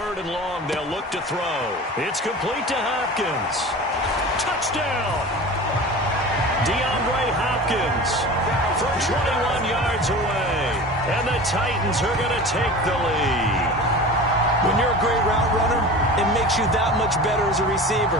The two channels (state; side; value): normal; both; correlation 0.35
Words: and long, they'll look to throw. It's complete to Hopkins. Touchdown! DeAndre Hopkins from 21 yards away. And the Titans are going to take the lead. When you're a great route runner, it makes you that much better as a